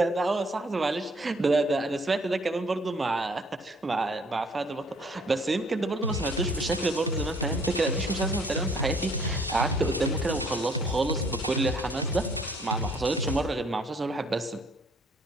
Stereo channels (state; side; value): normal; both; correlation 0.60